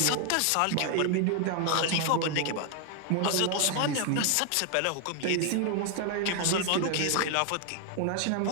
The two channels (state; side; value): different; both; correlation 0.00